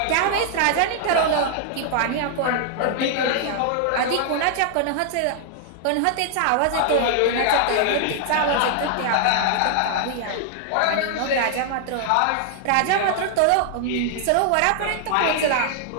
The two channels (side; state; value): both; different; correlation 0.00